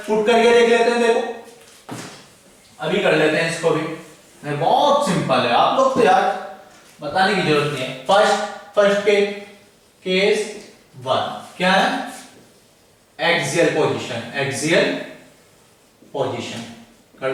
पुट करके देख लेते हैं, देखो अभी कर लेते हैं इसको भी, बहुत सिंपल है, आप लोग तो यार बताने की जरूरत नहीं है। फर्स्ट के केस 1 क्या है? एक्सियल पोजीशन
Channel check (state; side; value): identical; both; correlation 1.00